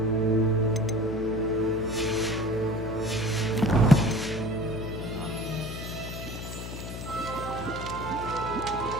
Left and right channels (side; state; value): left; noise; hum, 7 dB below the sound